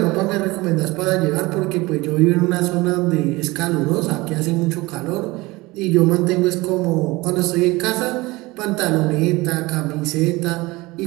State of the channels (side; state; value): left; quieter; 21.7 dB